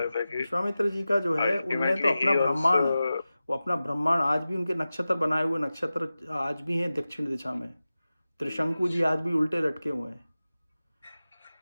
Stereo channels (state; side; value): inverted; both; correlation -0.95